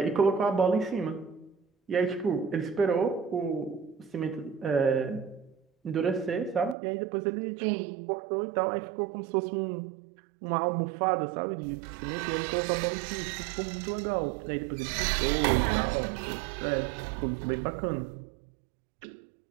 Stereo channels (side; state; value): left; drops out; at 6.8 s